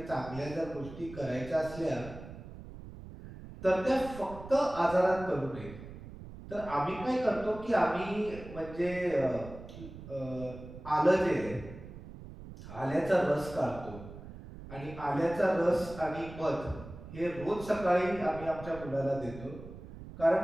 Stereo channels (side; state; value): right; noise; rumble, 14 dB below the sound